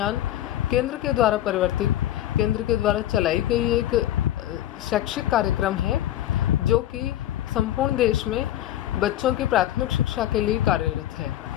केंद्र के द्वारा परिवर्तित, केंद्र के द्वारा चलाई गई एक शैक्षिक कार्यक्रम है, जो कि संपूर्ण देश में बच्चों की प्राथमिक शिक्षा के लिए कार्यरत है।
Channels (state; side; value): quieter; right; 13.0 dB